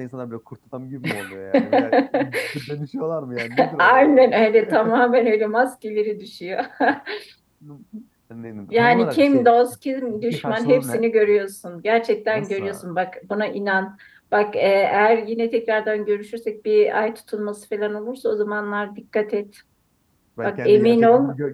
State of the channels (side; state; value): both; identical; correlation 1.00